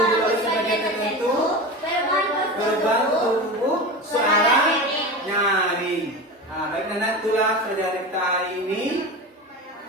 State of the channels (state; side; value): normal; both; correlation 0.27